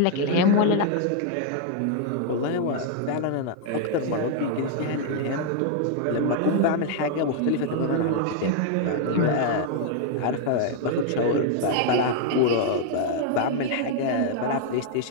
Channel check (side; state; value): both; different; correlation 0.00